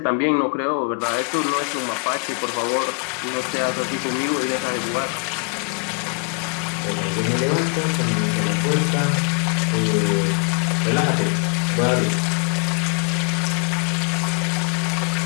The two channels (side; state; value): right; quieter; 39.9 dB